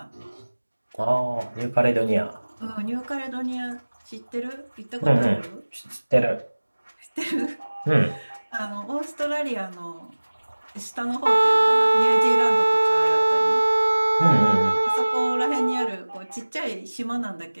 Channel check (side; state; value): both; inverted; correlation -1.00